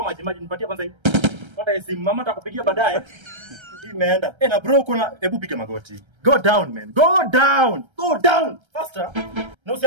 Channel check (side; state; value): left; late; 1.3 ms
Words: maji. Nipatie kwanza hii. Pata simu mama atakupigia baadaye. Imeenda. Na bro hebu piga magoti. Go down man. Go down. Faster. Na